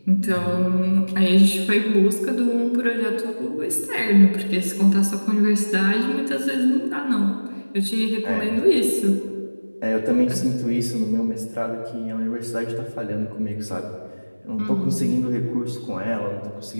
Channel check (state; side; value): inverted; both; correlation -1.00